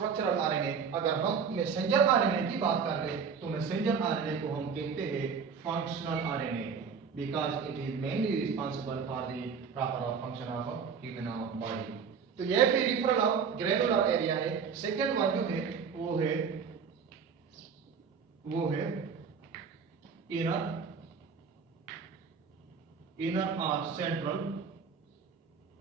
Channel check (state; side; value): quieter; left; 6.2 dB